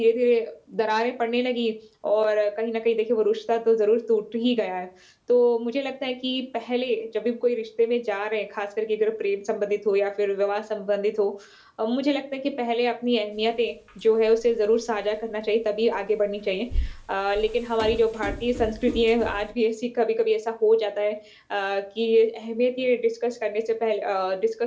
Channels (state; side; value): identical; both; correlation 1.00